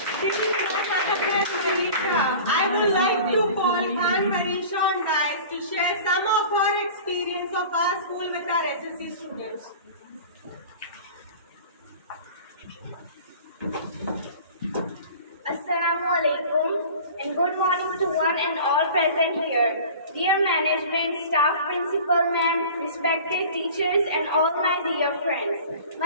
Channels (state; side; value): inverted; both; correlation -0.41